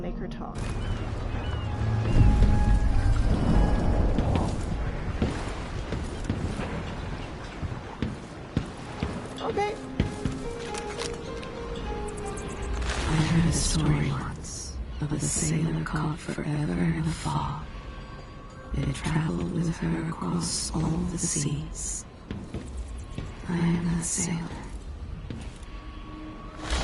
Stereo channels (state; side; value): identical; both; correlation 1.00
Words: her talk. Okay. I heard a story once of a sailor caught forever in a fog. It traveled with her across all the seas. I am that sailor.